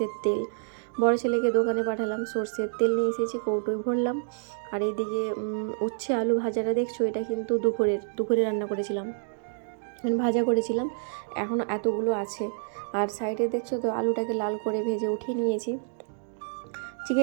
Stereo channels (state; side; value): silent; left; digital silence